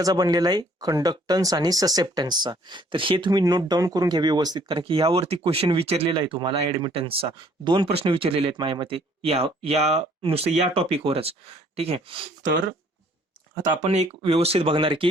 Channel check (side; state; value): both; normal; correlation 0.60